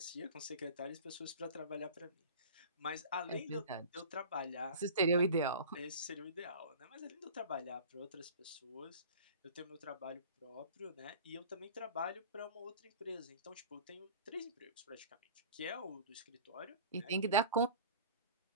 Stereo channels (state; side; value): inverted; both; correlation -0.39